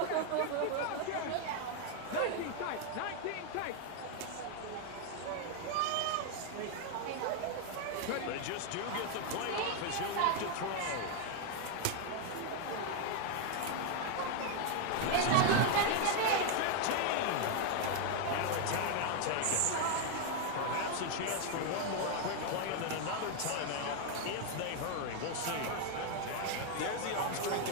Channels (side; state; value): both; different; correlation 0.01